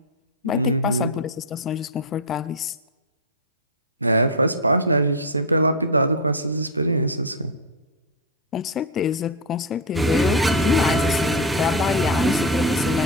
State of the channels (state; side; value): normal; both; correlation 0.05